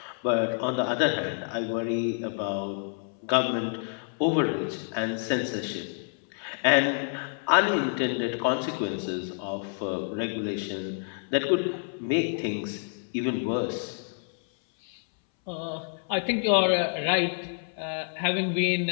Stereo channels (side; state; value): right; silent; 59 dB below the other